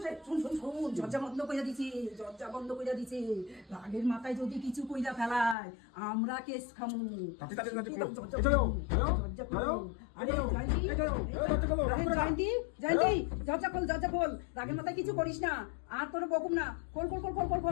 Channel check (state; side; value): drops out; right; at 5.6 s